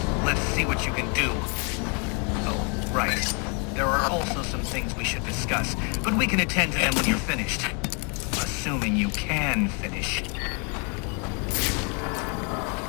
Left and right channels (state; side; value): quieter; right; 35.7 dB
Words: Let's see what you can do. Oh, right. There are also some things we should discuss, but we can attend to them when you're finished. Assuming you can finish.